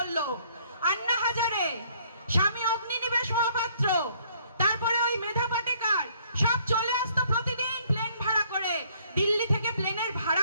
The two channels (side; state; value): both; inverted; correlation -0.63